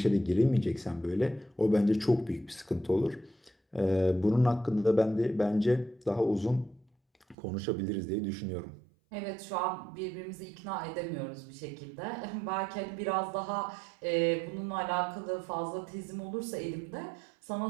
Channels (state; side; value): drops out; left; at 7.4 s